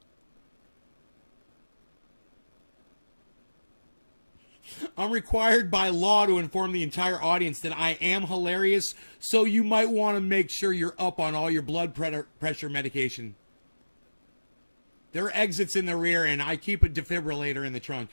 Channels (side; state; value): both; inverted; correlation -1.00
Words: I'm required by law to inform the entire audience that I am hilarious, so you might want to make sure you're up on all your blood pressure medication. There are exits in the rear, and I keep a defibrillator in the trunk.